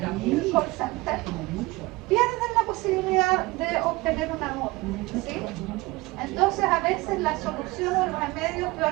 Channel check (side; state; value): left; quieter; 22.0 dB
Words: call center, pierden la posibilidad de obtener una nota, ¿sí? Entonces a veces la solución o el remedio es peor